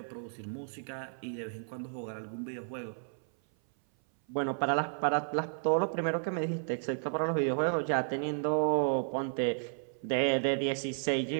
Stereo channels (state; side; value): silent; left; 56 dB below the other